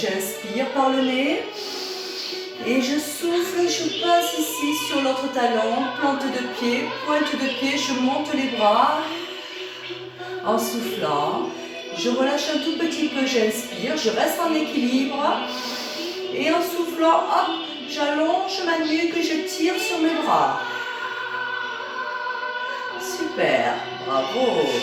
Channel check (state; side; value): identical; both; correlation 1.00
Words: par le nez. Et je souffle, je passe ici sur l'autre talon, plante de pied, pointe de pied, je monte les bras. En soufflant, je relâche un tout petit peu, j'inspire, je reste en équilibre. Et en soufflant, hop, j'allonge ma nuque, je tire sur mes bras. Super, bravo.